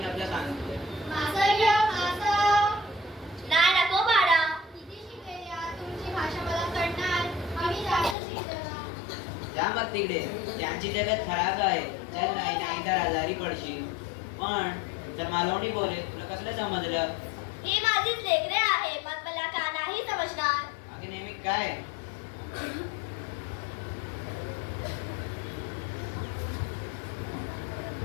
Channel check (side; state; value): right; drops out; at 8.2 s